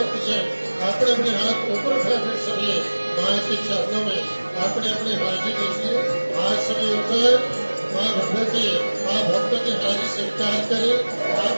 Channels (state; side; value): inverted; both; correlation -1.00